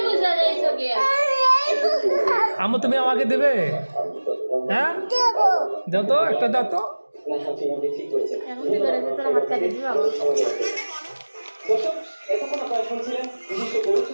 আমু তুমি আমাকে দেবে হ্যাঁ দাও তো একটা দাও তো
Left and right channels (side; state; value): both; inverted; correlation -1.00